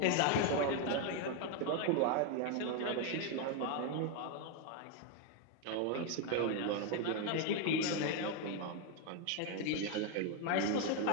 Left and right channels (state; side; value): different; both; correlation 0.01